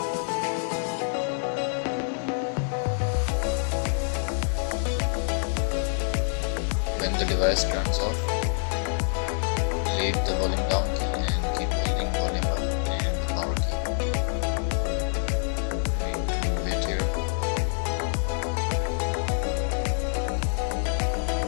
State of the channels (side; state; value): right; silent; 60 dB below the other